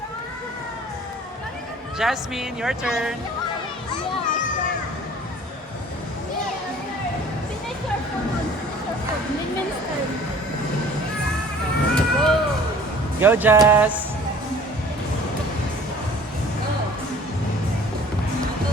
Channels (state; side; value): normal; both; correlation 0.49